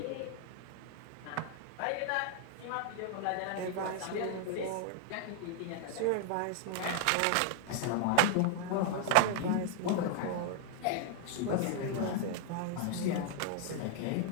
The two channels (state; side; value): different; both; correlation 0.00